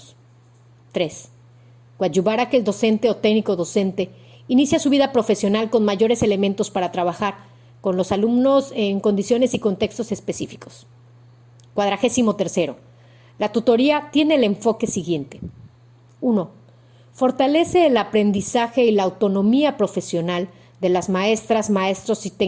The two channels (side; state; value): both; identical; correlation 1.00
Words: 3. Coadyuvar a que el docente o técnico docente inicie su vida profesional con mayores elementos para trabajar con los alumnos en condiciones y contextos específicos. 43. La tutoría tiene el enfoque siguiente. 1. Fortalece el aprendizaje y la autonomía profesional de las maestras, maestros y